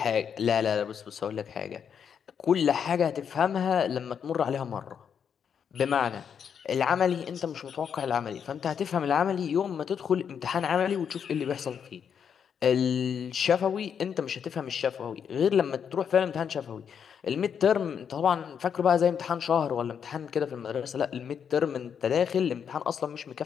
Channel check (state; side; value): quieter; right; 7.5 dB